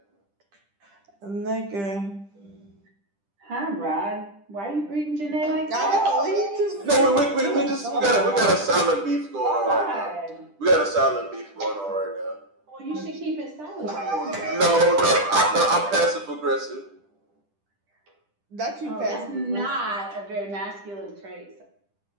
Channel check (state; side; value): late; left; 10 ms